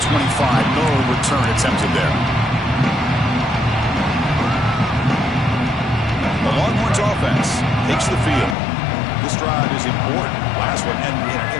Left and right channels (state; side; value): drops out; right; at 8.6 s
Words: No return attempted there. The Longhorns offense takes the field. This drive is important. Last one and an